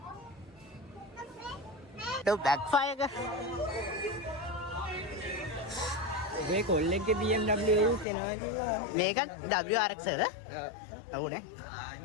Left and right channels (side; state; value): right; drops out; at 8.1 s